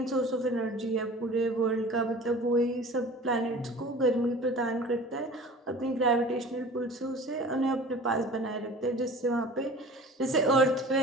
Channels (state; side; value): normal; both; correlation 0.41